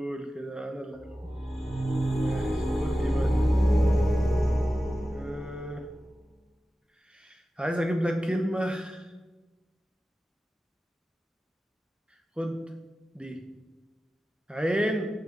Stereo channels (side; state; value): both; normal; correlation 0.94